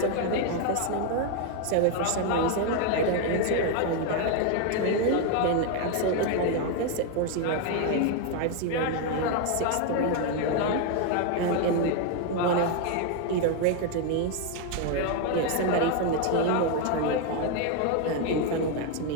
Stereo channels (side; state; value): both; different; correlation 0.01